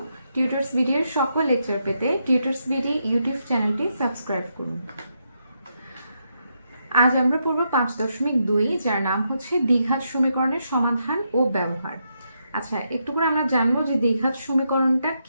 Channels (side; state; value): both; inverted; correlation -0.81